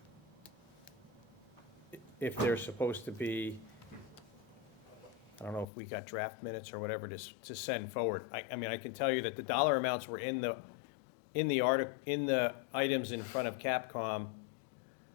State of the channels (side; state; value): right; drops out; at 5.7 s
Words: If there's supposed to be, I don't know if we got draft minutes or whatever to send forward. I mean, I can tell you that the dollar amounts were in the items in front of Capcom,